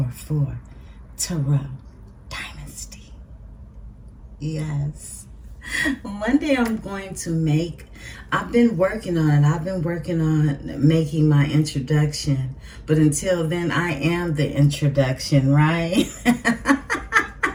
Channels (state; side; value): identical; both; correlation 1.00